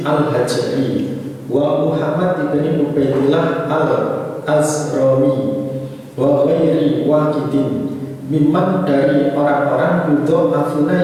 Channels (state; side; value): identical; both; correlation 1.00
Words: al-Hajari wa Muhammad ibni Ubaidillah al-Azrami wa ghairi waqidin mimman dari orang-orang yudo afuna